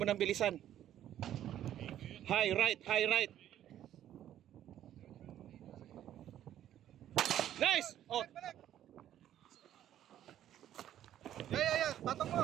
nang bilisan. High right. Nice! Oh, Balik! Yan! Patong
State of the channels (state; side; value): quieter; left; 11.5 dB